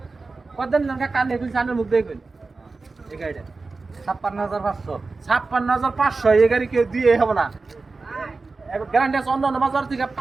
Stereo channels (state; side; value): quieter; left; 3.9 dB